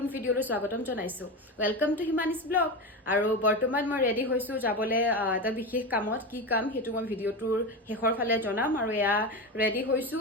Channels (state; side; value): normal; both; correlation 0.20